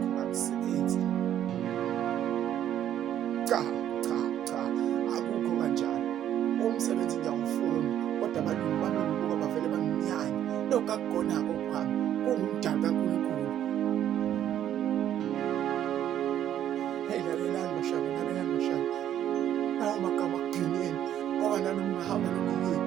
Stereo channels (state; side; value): quieter; left; 10.9 dB